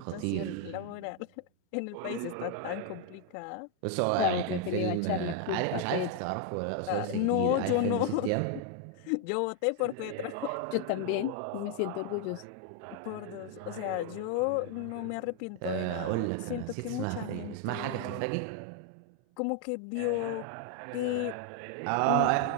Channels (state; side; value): different; both; correlation 0.00